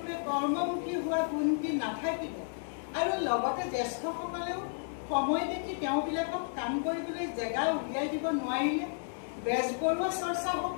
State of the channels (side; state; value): right; silent; digital silence